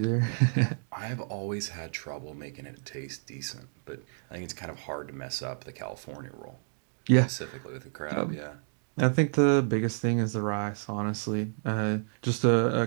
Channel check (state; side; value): silent; left; digital silence